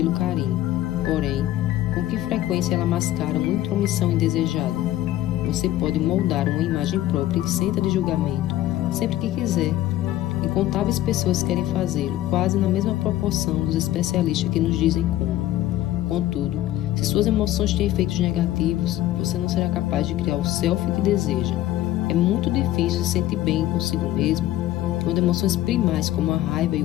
carinho, porém, com que frequência ela mascara uma intromissão indesejada. Você pode moldar uma imagem própria isenta de julgamento, sempre que quiser. Incontáveis pessoas querem fazê-lo, quase na mesma proporção dos especialistas que nos dizem como. Contudo, se suas emoções têm efeitos negativos, você não será capaz de criar o self que deseja. É muito difícil se sentir bem consigo mesmo, quando emoções primais como a raiva e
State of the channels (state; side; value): quieter; right; 14.2 dB